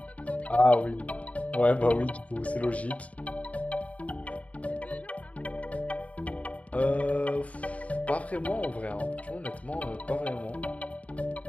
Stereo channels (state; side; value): late; right; 0.067 ms